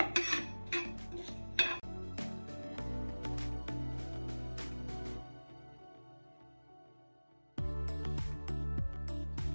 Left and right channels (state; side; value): inverted; both; correlation -1.00